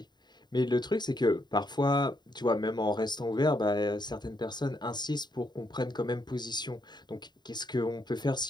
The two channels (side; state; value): right; late; 0.21 ms